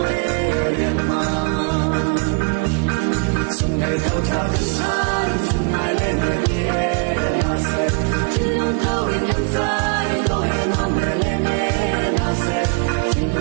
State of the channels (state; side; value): quieter; left; 40.0 dB